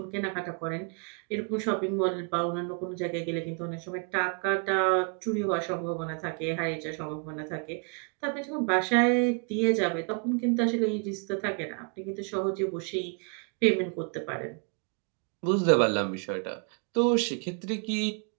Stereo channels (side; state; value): left; quieter; 37.7 dB